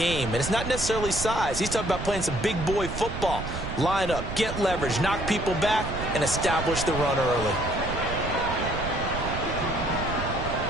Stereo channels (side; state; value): right; noise; rumble, 6 dB below the sound